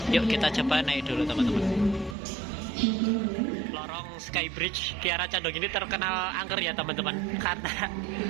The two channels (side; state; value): left; drops out; at 2.1 s